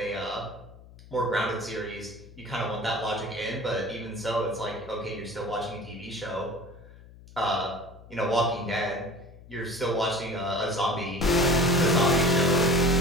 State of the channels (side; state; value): left; noise; hum, 20 dB below the sound